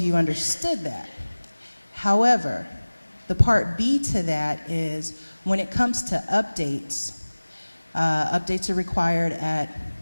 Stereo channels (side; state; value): both; inverted; correlation -1.00